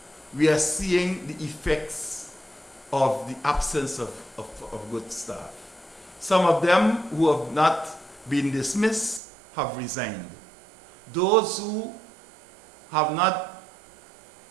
we are seeing the effects of the absence of good staff. Some of them who have not been dismissed have resigned. Those who have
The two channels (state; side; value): drops out; left; at 9.2 s